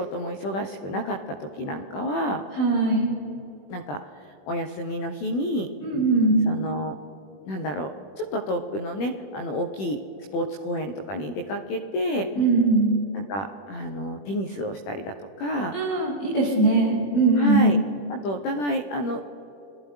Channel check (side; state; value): right; late; 21 ms